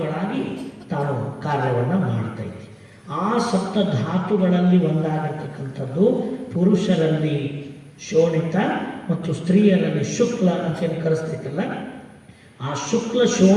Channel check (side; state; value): both; identical; correlation 1.00